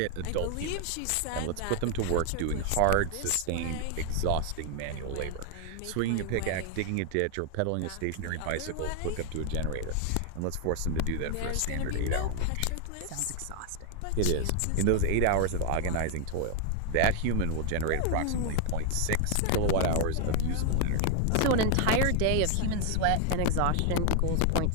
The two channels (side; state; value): both; different; correlation 0.00